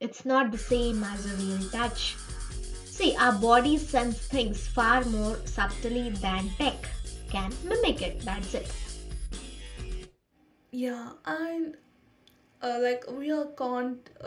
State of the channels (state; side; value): identical; both; correlation 1.00